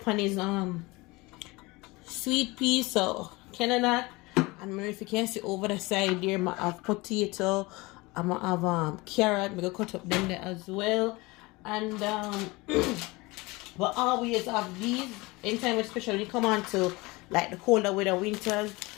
on is sweet pea, so Canada. And if you can see over the side there, I have potato. I'm gonna have carrot. I'm gonna cut up them there as well. And but always have these anytime, especially when you come on to like the colder weather, winters.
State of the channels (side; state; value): right; quieter; 23.3 dB